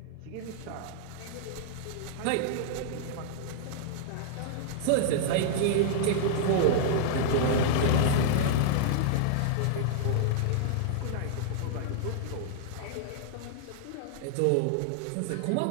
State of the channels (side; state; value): both; different; correlation -0.01